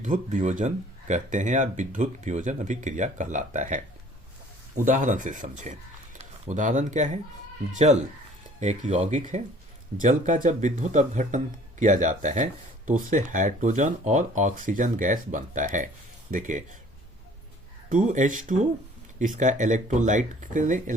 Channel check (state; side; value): normal; both; correlation 0.53